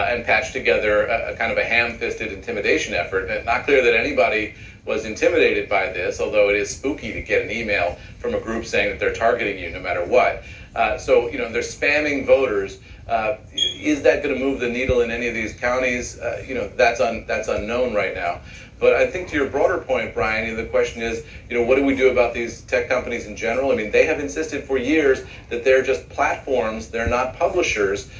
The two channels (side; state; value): both; identical; correlation 1.00